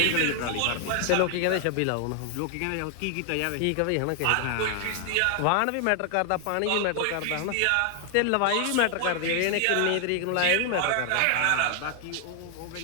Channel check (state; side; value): different; both; correlation 0.00